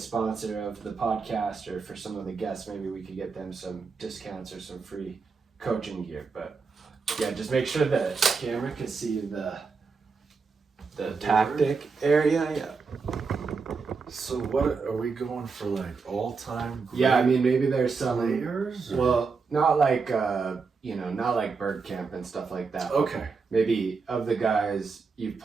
of the podcast, or for some of the guests, maybe we could get them some discounts or some free coaching gear. But yeah, just make sure the camera can see the tactic area. Yeah. So what are we going for, like all-time great Yeah, I mean, maybe there's some players? Or? Well, not like not like bird camp and stuff like that. Okay. Maybe of the guys you've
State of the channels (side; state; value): left; quieter; 4.9 dB